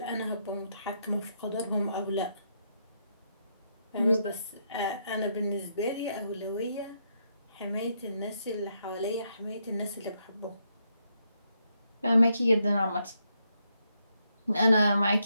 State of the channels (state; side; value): inverted; both; correlation -0.78